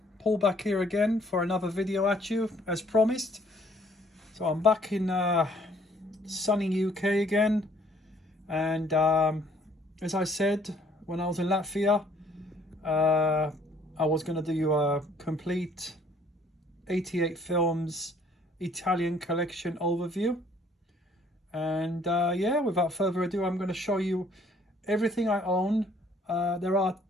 Paul back here again for another video at you, as promised. So I'm back in sunny UK again. And as I said, when I was in Latvia, I was going to do a complete 88 films Italian collection overview. And yeah, without further ado, I'm going to show you everything I own. There are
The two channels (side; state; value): both; normal; correlation 0.61